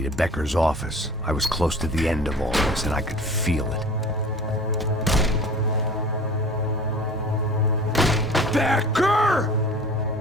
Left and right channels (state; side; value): normal; both; correlation 0.42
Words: to Becker's office. I was close to the end of all this, and I could feel it. Becker!